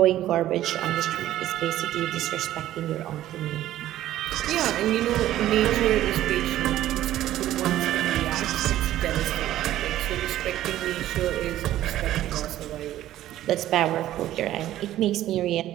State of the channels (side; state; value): left; quieter; 13.5 dB